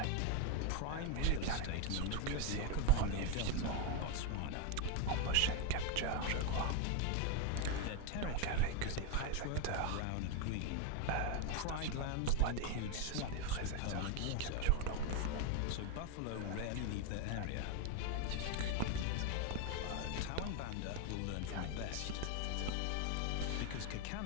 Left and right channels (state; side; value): different; both; correlation 0.02